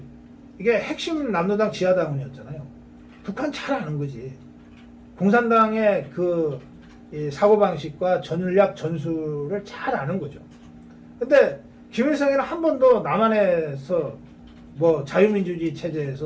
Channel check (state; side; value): identical; both; correlation 1.00